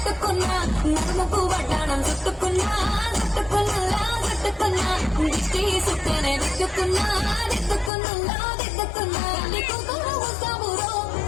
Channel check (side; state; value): right; drops out; at 7.9 s